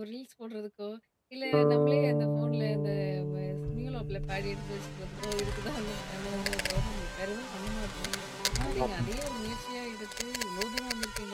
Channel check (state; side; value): identical; both; correlation 1.00